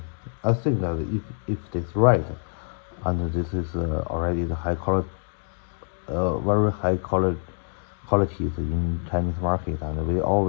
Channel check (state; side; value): silent; right; digital silence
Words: I think that if this right, and this is already the high quality, very high qualities in Chinese market, and we